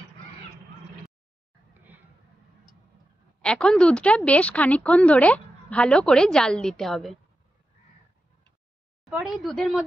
এখন দুধটা বেশ খানিকক্ষণ ধরে ভালো করে জাল দিতে হবে। পরে এই দুধের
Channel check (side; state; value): both; normal; correlation 0.90